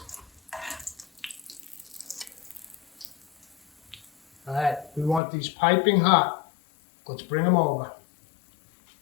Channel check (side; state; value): right; drops out; at 5.2 s